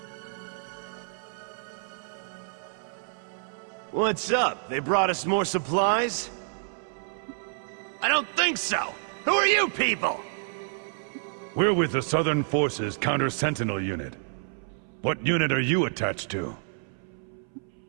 What's up? They brought us more supplies? I don't think so! Who are you people? We're with the Southern Forces Counter-Sentinel Unit. What unit are you attached to?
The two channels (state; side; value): silent; left; 59 dB below the other